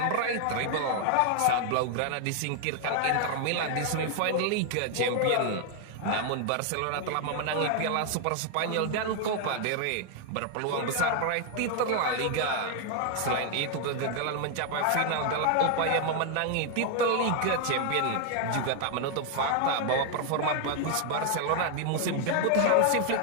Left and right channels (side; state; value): both; different; correlation 0.00